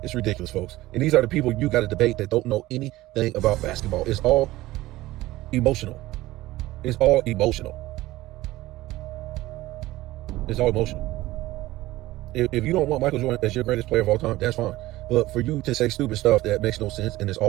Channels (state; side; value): quieter; left; 17.3 dB